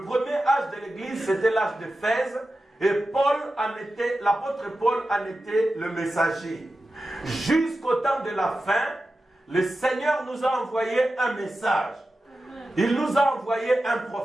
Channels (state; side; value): normal; both; correlation 0.92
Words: premier âge de l'Église, c'était l'âge d'Éphèse, et l'apôtre Paul en était le messager. Jusqu'au temps de la fin, le Seigneur nous a envoyé un message. Il nous a envoyé un